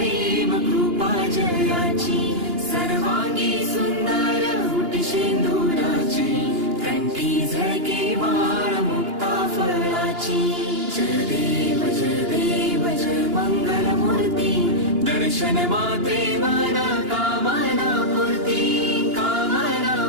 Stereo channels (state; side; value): late; left; 2.9 ms